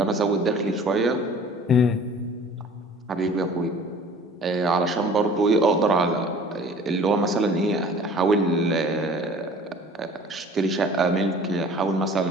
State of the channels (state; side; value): normal; both; correlation 0.48